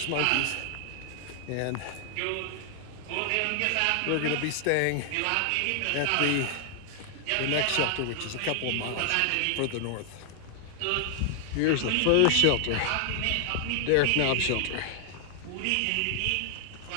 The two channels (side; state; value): both; different; correlation 0.00